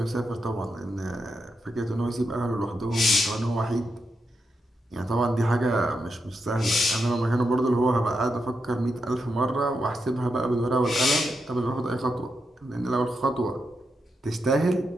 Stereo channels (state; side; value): normal; both; correlation 0.84